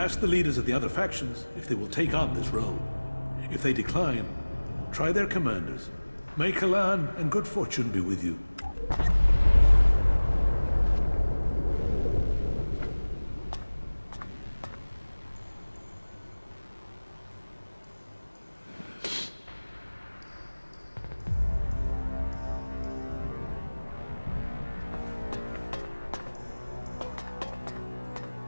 the leaders of the other factions if they will take on this role. If they decline, try their commanders. May Kalan and good fortune be with you.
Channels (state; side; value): inverted; both; correlation -1.00